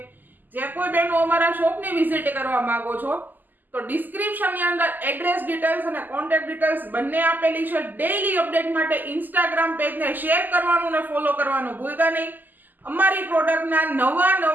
જે કોઈ બહેનો અમારા શોપની વિઝિટ કરવા માંગો છો તો ડિસ્ક્રિપ્શનની અંદર એડ્રેસ ડિટેલ્સ અને કોન્ટેક્ટ ડિટેલ્સ બંને આપેલી છે. ડેઈલી અપડેટ માટે ઇન્સ્ટાગ્રામ પેજને શેર કરવાનું અને ફોલો કરવાનું ભૂલતા નહીં. અમારી પ્રોડક્ટના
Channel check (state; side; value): late; left; 0.086 ms